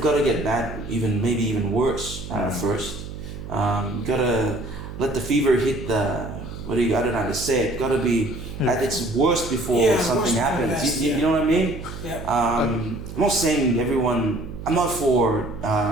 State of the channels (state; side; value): noise; right; hum, 10 dB below the sound